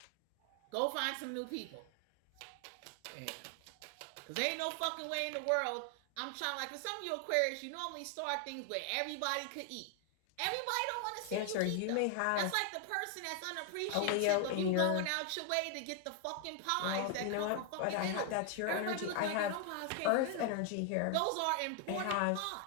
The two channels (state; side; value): different; both; correlation 0.00